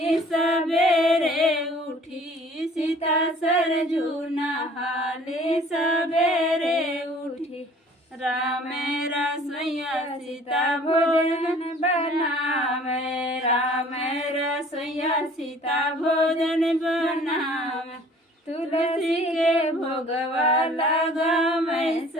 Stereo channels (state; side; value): normal; both; correlation 0.52